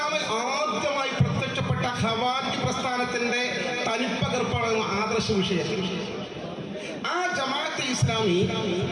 ആദ്യമായി പ്രത്യക്ഷപ്പെട്ട ഖവാരിജ് പ്രസ്ഥാനത്തിന്റെ തനിപ്പകർപ്പാണ് ആദർശ വിഷയം. ആ ജമാഅത്തെ ഇസ്ലാമി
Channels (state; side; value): identical; both; correlation 1.00